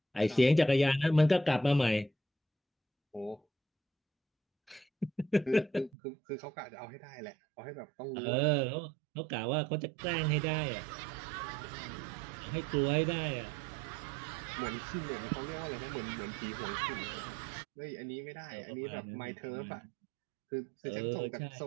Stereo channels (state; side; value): drops out; left; at 5.9 s